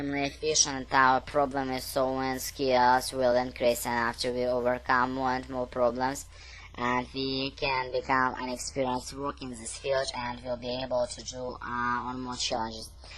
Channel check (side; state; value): both; identical; correlation 1.00